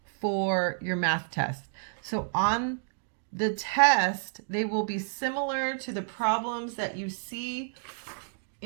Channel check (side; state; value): left; silent; digital silence